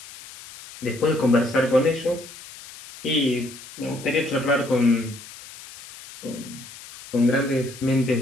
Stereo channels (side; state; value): left; noise; hiss, 17 dB below the sound